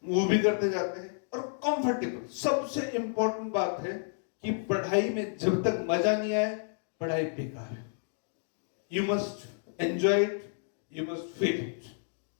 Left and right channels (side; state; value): right; silent; digital silence